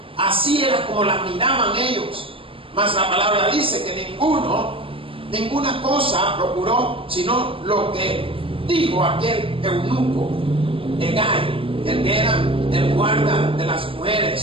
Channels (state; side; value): late; left; 0.26 ms